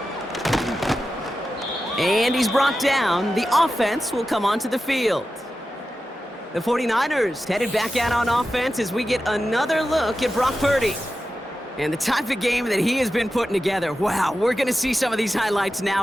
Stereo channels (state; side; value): normal; both; correlation 0.92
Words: And he's brought down. The offense will come onto the field. The 49ers headed back out on offense as we get another look at Brock Purdy. And the type of game that he has been putting together. Wow, we're going to see some of these highlights